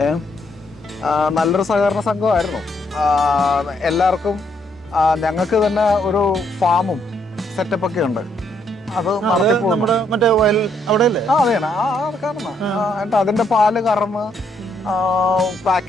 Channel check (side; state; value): both; normal; correlation 0.73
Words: നല്ലൊരു സഹകരണ സംഘമായിരുന്നു. എല്ലാവർക്കും ഞങ്ങൾക്ക് തന്നെ ഒരു ഫാമും സെറ്റപ്പൊക്കെ ഉണ്ട്. അത് മറ്റേ വയൽ അവിടെയല്ലേ? അതെയാണ്. എന്നിട്ട് അതിന്റെ പാല് കറന്ന്